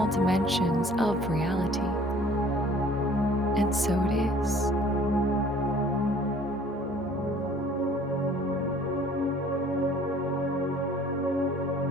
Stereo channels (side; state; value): both; normal; correlation 0.52